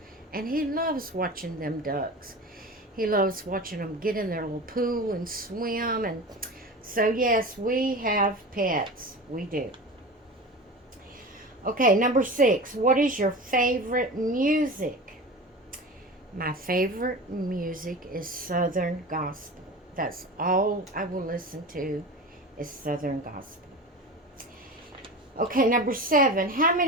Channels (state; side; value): normal; both; correlation 0.31